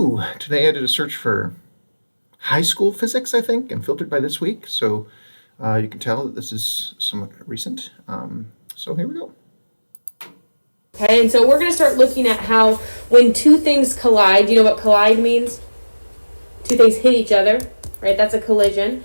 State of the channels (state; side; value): inverted; both; correlation -1.00